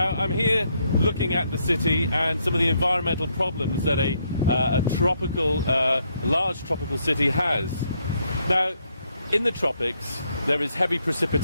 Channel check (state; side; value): inverted; both; correlation -0.74